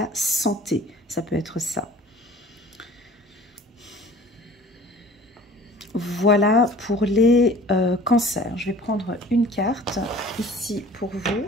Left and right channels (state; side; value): normal; both; correlation 0.47